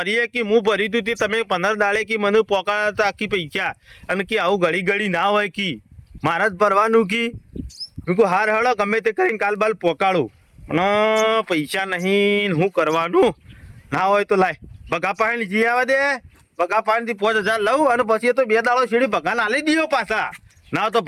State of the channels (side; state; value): both; identical; correlation 1.00